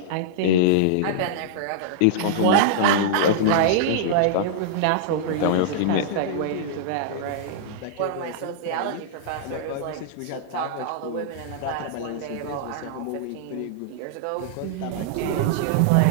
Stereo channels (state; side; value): different; both; correlation -0.02